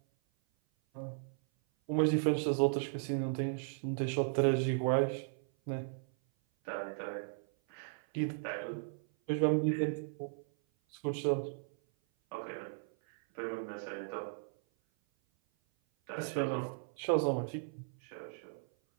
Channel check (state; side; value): silent; left; 54 dB below the other